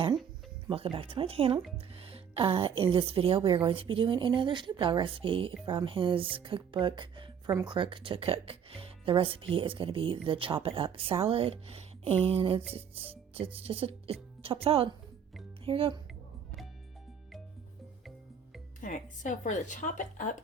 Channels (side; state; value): left; quieter; 7.5 dB